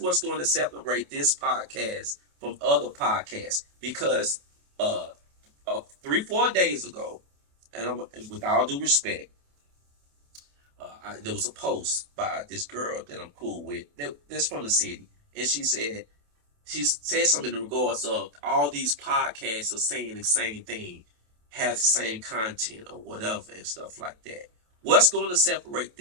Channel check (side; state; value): left; late; 28 ms